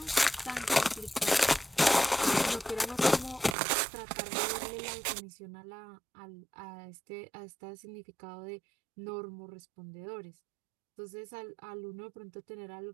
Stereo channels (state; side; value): drops out; left; at 3.6 s